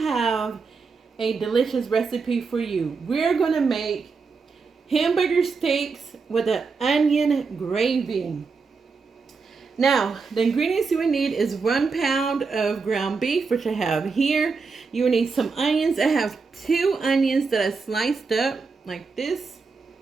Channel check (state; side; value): quieter; left; 4.8 dB